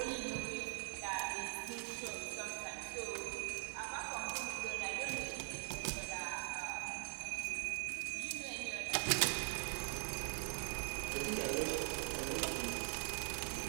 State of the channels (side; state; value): left; silent; digital silence